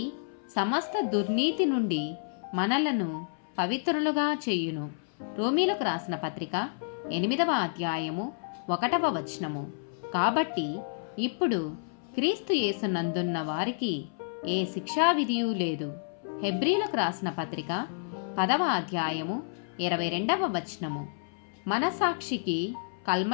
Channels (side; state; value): right; silent; 58 dB below the other